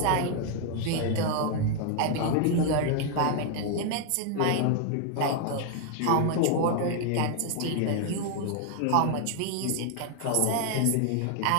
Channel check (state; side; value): different; both; correlation 0.00